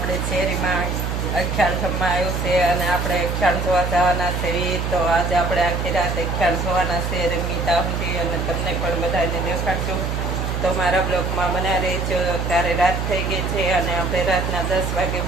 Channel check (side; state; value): right; noise; hum, 2 dB below the sound